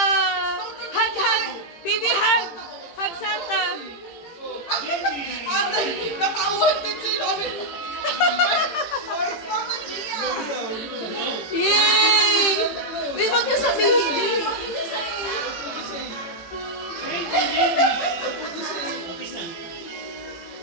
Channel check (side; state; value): right; late; 18 ms